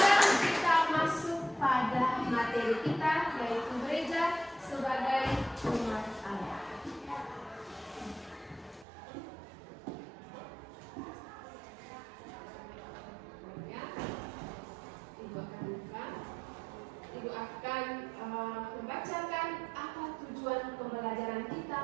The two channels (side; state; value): left; drops out; at 8.8 s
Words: kita masuk pada materi kita, yaitu gereja sebagai umat Allah. Ya, Ibu akan buka. Ibu akan membacakan apa tujuan pembelajaran kita